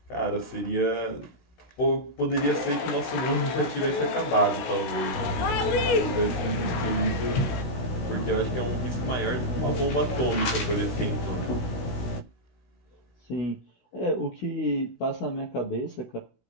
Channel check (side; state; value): right; late; 17 ms